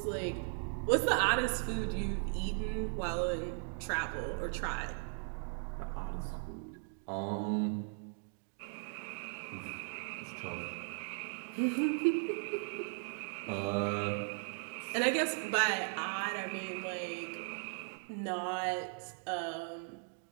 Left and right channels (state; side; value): silent; left; 53 dB below the other